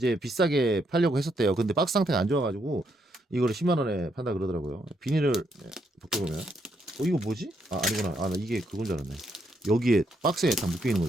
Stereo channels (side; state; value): both; normal; correlation 0.76